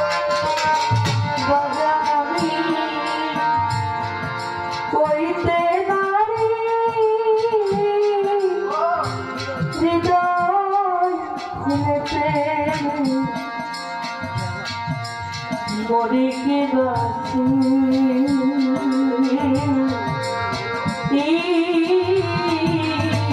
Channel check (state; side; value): identical; both; correlation 1.00